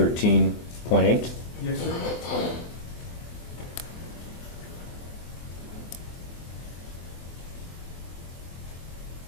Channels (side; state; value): right; late; 24 ms